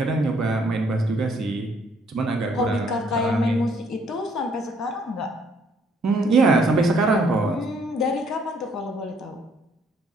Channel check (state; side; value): normal; both; correlation 0.66